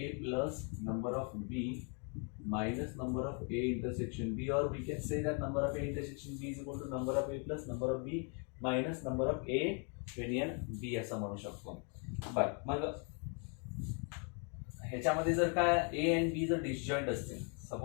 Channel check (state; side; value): quieter; right; 38.1 dB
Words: plus number of B minus number of A intersection B, or we can say that number of A intersection B is equal to number of A plus number of B minus number of A union B असं म्हणू शकतो. बर मग ह्याच्यामध्ये जर काय A and B जर disjoint असतील,